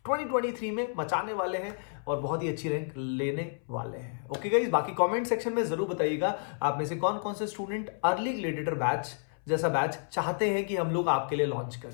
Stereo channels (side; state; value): right; silent; 57 dB below the other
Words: 2023 में मचाने वाले हैं और बहुत ही अच्छी रैंक लेने वाले हैं। ओके गाइस, बाकी कमेंट सेक्शन में जरूर बताइएगा आप में से कौन कौन से स्टूडेंट अर्ली ग्रेडिएटर बैच जैसा बैच चाहते हैं कि हम लोग आपके लिए लॉन्च